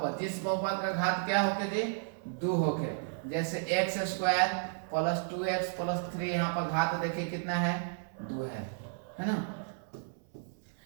जिस बहुपद का घात क्या होके जी? 2 होके। जैसे x square plus 2x plus 3, यहाँ पर घात देखिए कितना है? 2 है ना।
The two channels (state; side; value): silent; left; 56 dB below the other